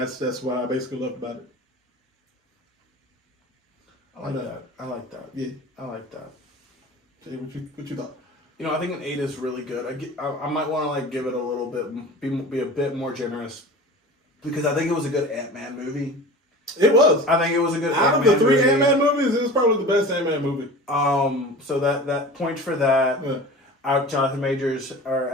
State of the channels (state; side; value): normal; both; correlation 0.36